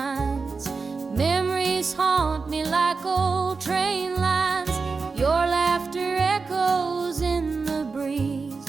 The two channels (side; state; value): left; quieter; 4.5 dB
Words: Memories haunt me like old train lines. Your laughter echoes in the breeze,